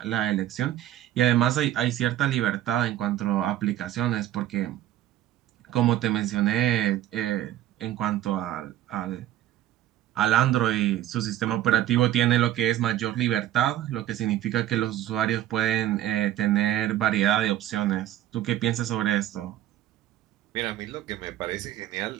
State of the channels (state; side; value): quieter; left; 13.1 dB